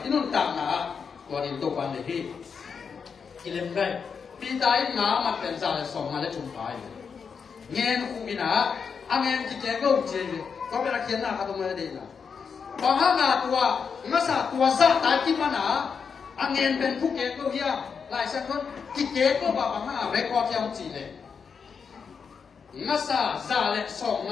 nón tạm nào, còn in tộc ban này thì cái lên đây, bây giờ ngã mặt bên trái là sòng mà lấy trúng phải, nghe nó không bị nào, anh em chỉ chơi câu chơi, có biết là khiến nào không mới đi nào, bằng hàng ngã tua, ngã sa tua sa tại kim mà nào, anh em bên phúc kế câu kia, lại xem con, chỉ kế câu bảo bằng hàng ngã record theo chỉ này. Ngasa zale song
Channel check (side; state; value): right; quieter; 6.1 dB